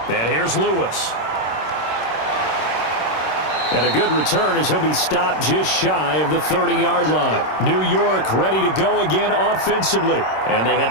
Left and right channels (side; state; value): right; late; 26 ms